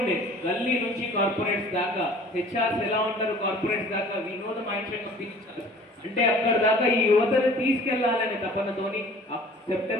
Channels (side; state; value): both; normal; correlation 0.49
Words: గల్లీ నుంచి కార్పొరేట్స్ దాకా, హెచ్ఆర్స్ ఎలా ఉంటారు కార్పొరేట్స్ దాకా, we know the mind set of teachers. అంటే అక్కడ దాకా ఈ యువతను తీసుకెళ్లాలనే తపనతోని